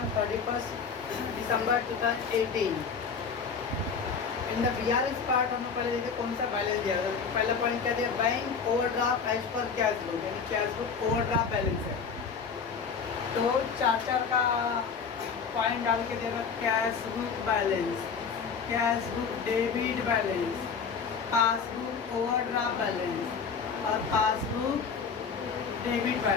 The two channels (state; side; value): quieter; right; 5.9 dB